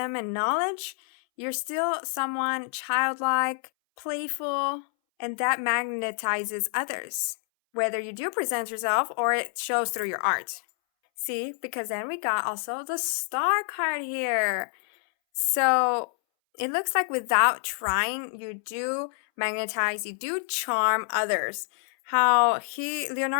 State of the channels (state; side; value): silent; right; 60 dB below the other